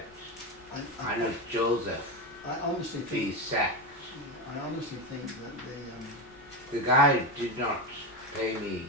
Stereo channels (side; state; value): both; normal; correlation 0.15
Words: I Joseph honestly be think sacked. I honestly think that The guy did not pay me.